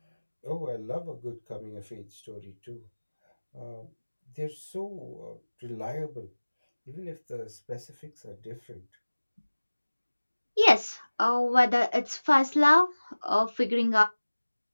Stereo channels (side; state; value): both; inverted; correlation -1.00